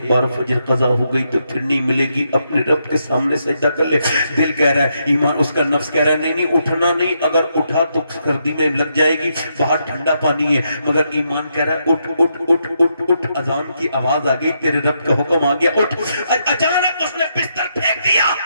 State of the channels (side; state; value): both; inverted; correlation -0.79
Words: بار فجر قضا ہو گئی تو پھر نہیں ملے گی، اپنے رب کے سامنے سجدہ کر لے، دل کہہ رہا ہے، ایمان، اس کا نفس کہہ رہا ہے نہیں نہیں اٹھنا نہیں، اگر اٹھا تو سردی میں لگ جائے گی، باہر ٹھنڈا پانی ہے، مگر ایمان کہہ رہا ہے اٹھ اٹھ اٹھ اٹھ اٹھ، اذان کی آواز آ گئی، تیرے رب کا حکم آ گیا، اٹھ۔ اچانک اس نے بستر پھینک دیا